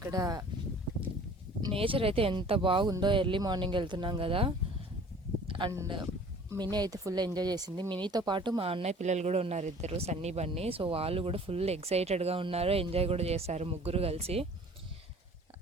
నేచర్ అయితే ఎంత బాగుందో. ఎర్లీ మార్నింగ్ వెళ్తున్నాం కదా. అండ్ మినీ అయితే ఫుల్ ఎంజాయ్ చేసింది. మినీతో పాటు మా అన్నయ్య పిల్లలు కూడా ఉన్నారు, ఇద్దరు సన్నీ బన్నీ. సో వాళ్ళు కూడా ఫుల్ ఎక్సైటెడ్గా ఉన్నారు, ఎంజాయ్ కూడా చేశారు ముగ్గురు కలిసి.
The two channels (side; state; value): both; normal; correlation 0.49